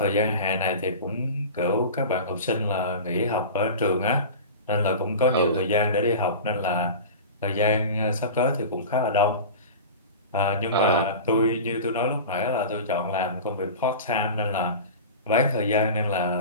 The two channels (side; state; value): both; inverted; correlation -0.32